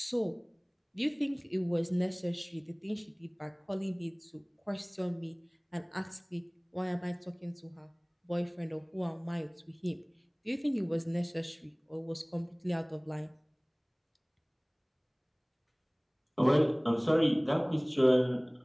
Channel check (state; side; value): identical; both; correlation 1.00